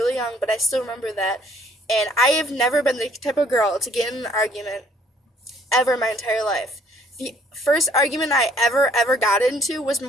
young, but I still remember that. And I have never been the type of girl to get in an argument ever in my entire life. The first argument I ever got into was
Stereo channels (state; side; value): normal; both; correlation 0.61